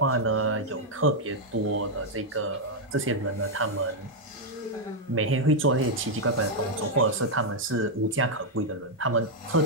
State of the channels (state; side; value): normal; both; correlation -0.02